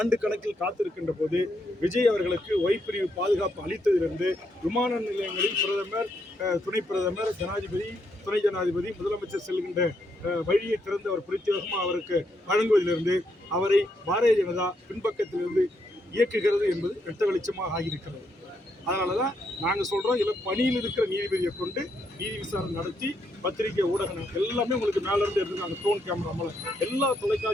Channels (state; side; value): normal; both; correlation 0.77